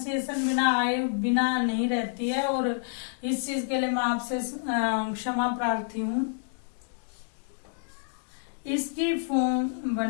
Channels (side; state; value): right; silent; digital silence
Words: बिना आए बिना नहीं रहती है, और इस चीज के लिए मैं आपसे क्षमा प्रार्थी हूँ। इसकी फॉर्म